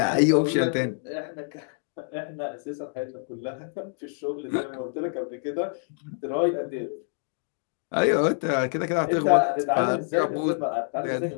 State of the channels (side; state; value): right; silent; digital silence